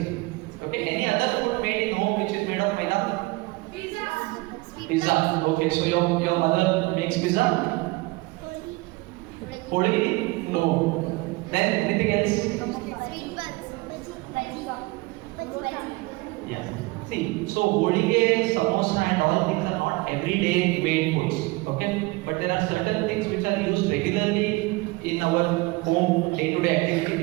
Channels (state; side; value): quieter; left; 23.1 dB